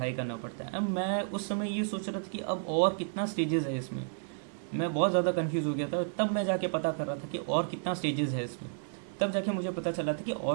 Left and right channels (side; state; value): left; silent; digital silence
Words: करना पड़ता है। अब मैं उस समय ये सोच रहा था कि अब और कितना स्टेजेस है इसमें, मैं बहुत ज़्यादा कंफ्यूज हो गया था। तब मैं जाके पता कर रहा था कि और कितना स्टेजेस है इसमें, तब जाके मुझे पता चला था कि